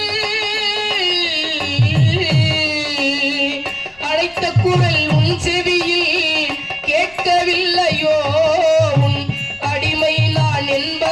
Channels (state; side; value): noise; left; rumble, 27 dB below the sound